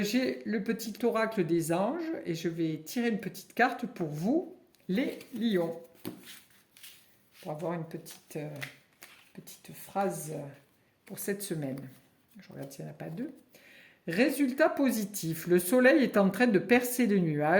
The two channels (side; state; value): both; identical; correlation 1.00